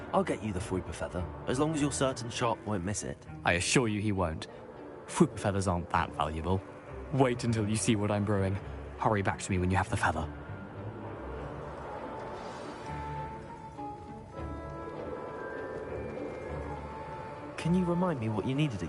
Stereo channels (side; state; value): both; identical; correlation 1.00